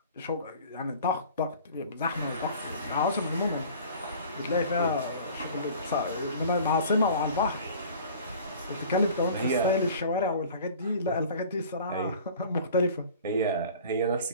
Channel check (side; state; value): both; inverted; correlation -0.45